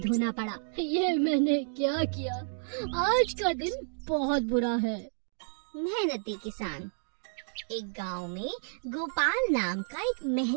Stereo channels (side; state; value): left; silent; digital silence